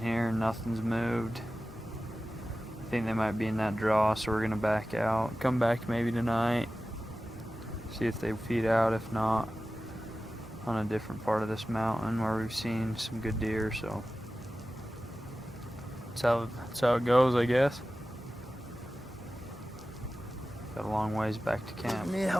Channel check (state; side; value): normal; both; correlation 0.95